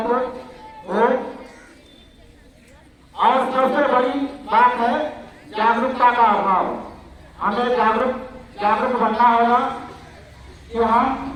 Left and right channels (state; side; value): identical; both; correlation 1.00